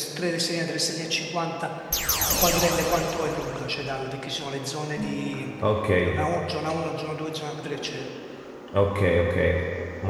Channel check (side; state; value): both; identical; correlation 1.00